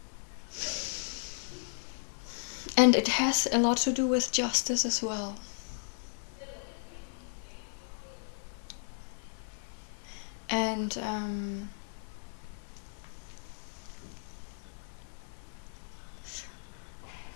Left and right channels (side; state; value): right; silent; 54 dB below the other